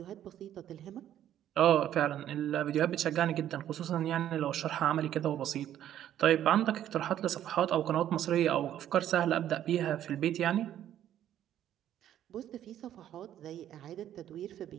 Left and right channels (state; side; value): quieter; left; 11.3 dB